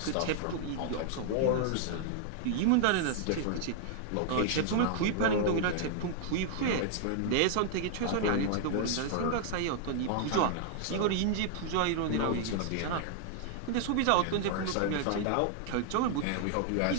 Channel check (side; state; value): both; different; correlation 0.00